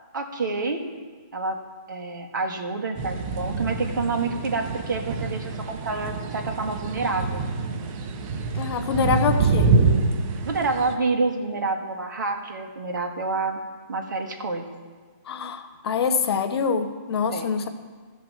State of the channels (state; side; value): inverted; both; correlation -0.40